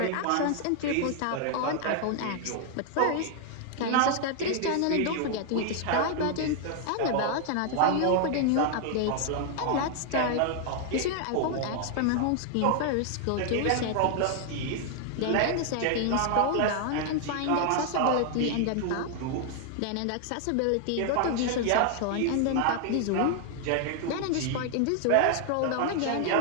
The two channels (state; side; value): different; both; correlation 0.00